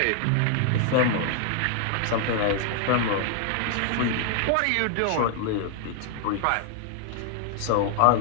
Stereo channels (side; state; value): both; different; correlation 0.00